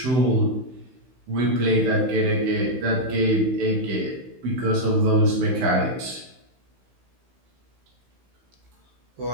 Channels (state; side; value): late; left; 15 ms